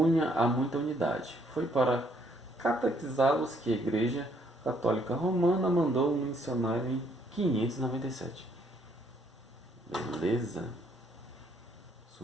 a muita unidade. Foi para catequizá-los que a igreja Católica Romana mandou um missionário em 597. Beleza.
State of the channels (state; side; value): normal; both; correlation 0.68